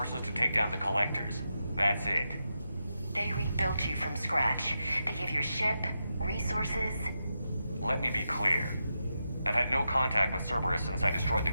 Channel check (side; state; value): both; inverted; correlation -0.87